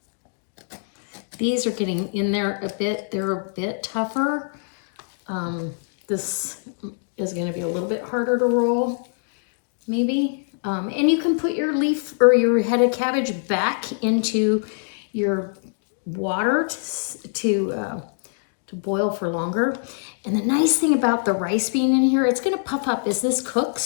These are getting in there a bit. They're a bit tougher. This is going to be a little bit harder to roll, maybe. And you can put your leaf or your head of cabbage back into your water to boil for longer. And the nice thing about the rice being in here, it's going to puff up as this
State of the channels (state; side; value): silent; right; digital silence